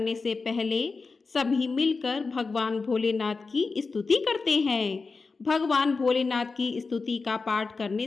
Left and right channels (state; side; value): quieter; right; 4.3 dB